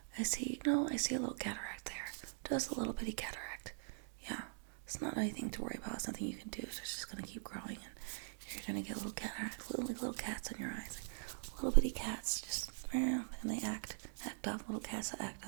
I see a little cataract there. Just a little bitty cataract. Yeah, it's not anything to worry about. It's nothing you can do. So it's just gonna keep growing, and you're gonna get little cataracts, little cats on your eyes, like little bitty cats. Just and they act up. Little cats that act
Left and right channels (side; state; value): left; silent; digital silence